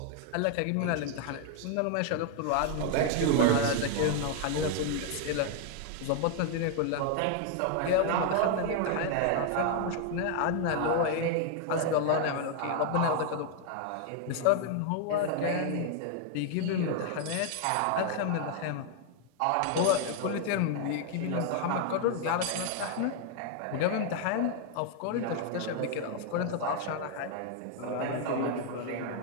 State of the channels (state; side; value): different; both; correlation 0.00